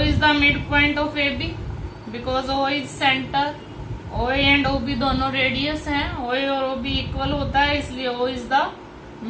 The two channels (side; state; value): both; identical; correlation 1.00